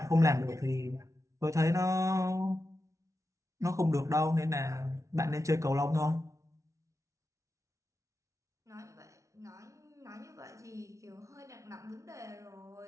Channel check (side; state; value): left; late; 0.15 ms